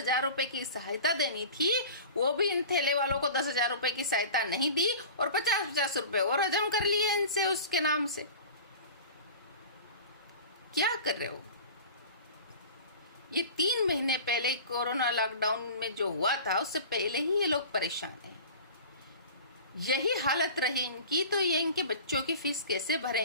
रुपए की सहायता देनी थी वो भी इन ठेले वालों को 10,000 रुपए की सहायता नहीं दी और 50-50 रुपए और हजम कर लिए इनसे उसके नाम से। क्या कर रहे हो? ये 3 महीने पहले कोरोना लॉकडाउन में जो हुआ था उससे पहले ही ये लोग परेशान हैं। यही हालत रही इनकी तो ये इनके बच्चों की फीस कैसे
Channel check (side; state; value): both; inverted; correlation -0.38